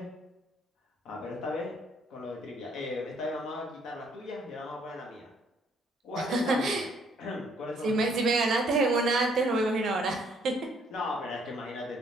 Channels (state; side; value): normal; both; correlation 0.65